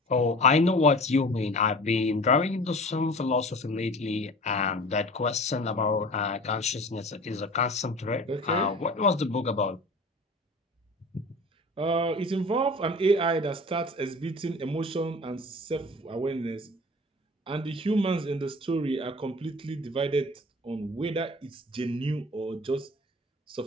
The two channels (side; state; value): both; normal; correlation 0.41